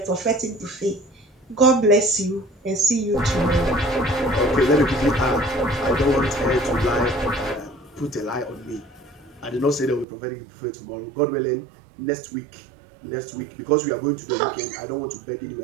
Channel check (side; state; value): left; drops out; at 10.1 s